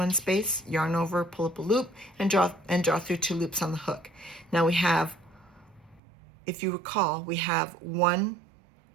space, yarn over, pull up a loop, and draw through 2 loops on the hook. Now we have, if you recall, we have a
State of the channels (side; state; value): left; drops out; at 6.0 s